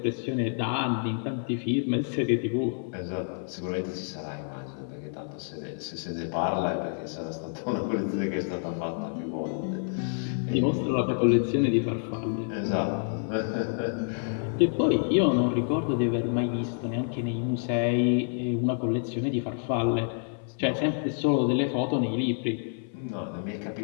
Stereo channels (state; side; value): silent; right; 55 dB below the other